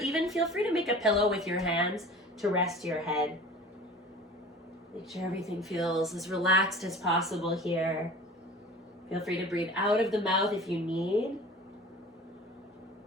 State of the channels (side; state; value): both; normal; correlation 0.41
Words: feel free to make a pillow with your hands to rest your head. Make sure everything feels as relaxed as possible here. Feel free to breathe out of the mouth if you need.